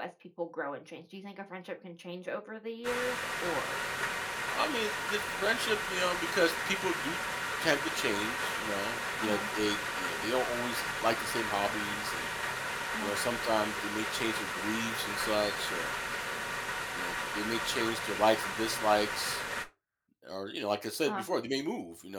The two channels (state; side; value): identical; both; correlation 1.00